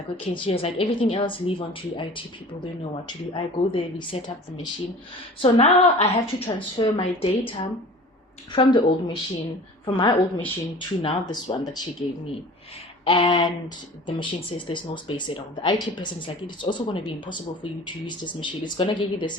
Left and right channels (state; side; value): normal; both; correlation 0.42